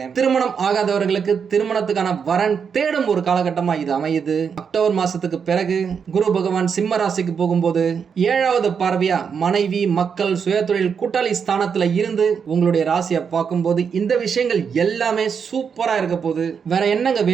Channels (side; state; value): left; quieter; 6.6 dB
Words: திருமணம் ஆகாதவர்களுக்கு திருமணத்துக்கான வரன் தேடும் ஒரு காலகட்டமா இது அமையுது. அக்டோபர் மாசத்துக்கு பிறகு குரு பகவான் சிம்ம ராசிக்கு போகும்போது 7வது பார்வையா மனைவி, மக்கள், சுயதொழில், கூட்டாளி ஸ்தானத்துல இருந்து உங்களுடைய ராசியை பார்க்கும்போது இந்த விஷயங்கள் எல்லாமே சூப்பரா இருக்க போகுது. வேற என்னங்க